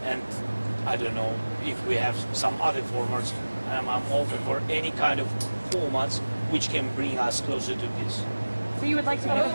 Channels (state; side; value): inverted; both; correlation -1.00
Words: and I don't know if we have some other formats. I'm open for any kind of formats which can bring us closer to peace. So you would like to go